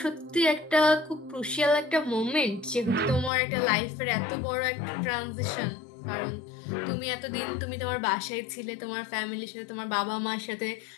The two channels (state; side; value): drops out; right; at 3.3 s